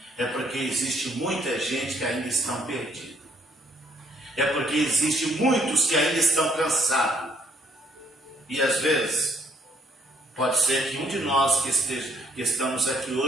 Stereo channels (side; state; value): both; normal; correlation 0.67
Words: É porque existe muita gente que ainda estão perdidos. É porque existe muitos que ainda estão cansados. E às vezes, pode ser que um de nós que estamos aqui